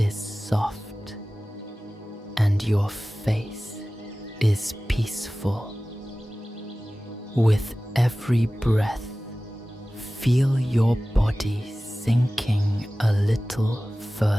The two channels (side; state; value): both; normal; correlation 0.97